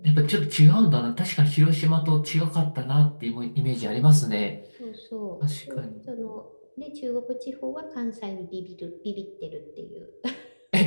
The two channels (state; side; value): inverted; both; correlation -1.00